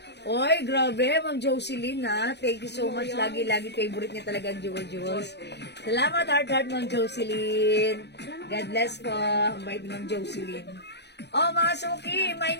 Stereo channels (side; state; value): right; late; 0.50 ms